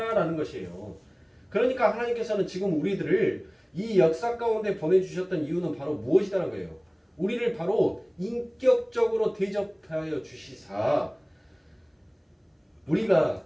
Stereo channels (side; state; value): both; identical; correlation 1.00